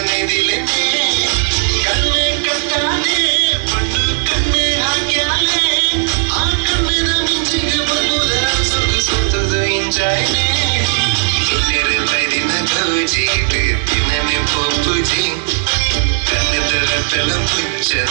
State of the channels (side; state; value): left; silent; digital silence